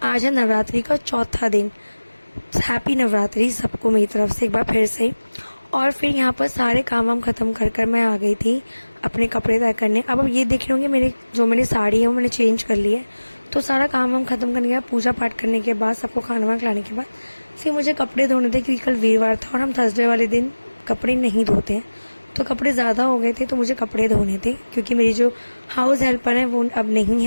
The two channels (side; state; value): both; inverted; correlation -1.00